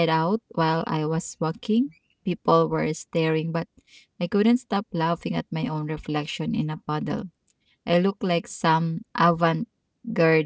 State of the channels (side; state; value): both; identical; correlation 1.00